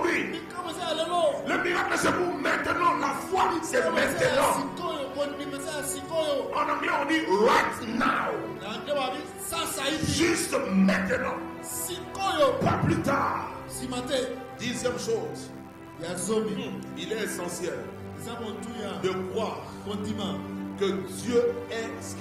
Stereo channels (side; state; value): both; identical; correlation 1.00